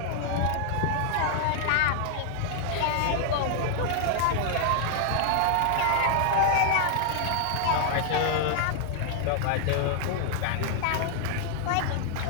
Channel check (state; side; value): different; both; correlation 0.00